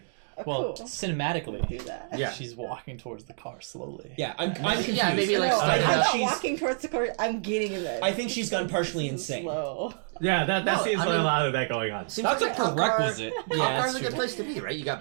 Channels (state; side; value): silent; left; digital silence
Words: Oh, Well, cool. cinematically, Do that. Yeah. she's walking towards the car slowly. Yeah, I'm confused. Yeah, maybe like No, start I'm I not think she's- walking towards the car. I'm getting in there. I think she's gone partially insane. Slow. Yeah, that No, seems I like a mean- lot of that going on. Seems That's like a cop prerequisite. Car, Yeah, cop car's that's a good true. place to be, right? You got